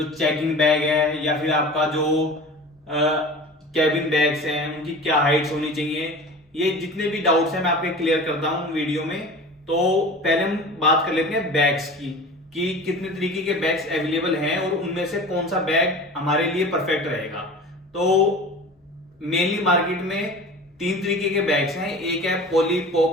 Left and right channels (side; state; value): both; normal; correlation 0.37